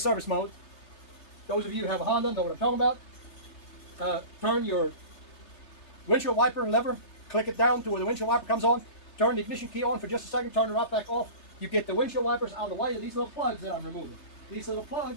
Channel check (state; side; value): late; right; 3.2 ms